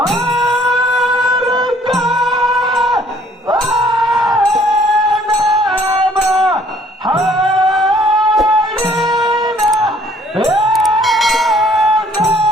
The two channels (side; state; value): both; normal; correlation 0.60